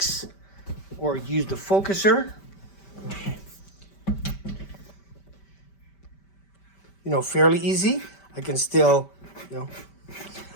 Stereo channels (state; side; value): late; right; 5.1 ms